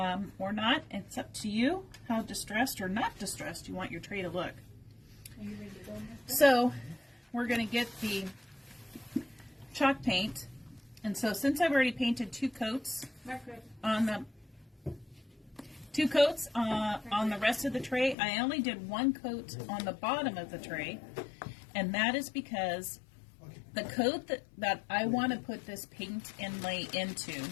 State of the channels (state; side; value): drops out; right; at 18.2 s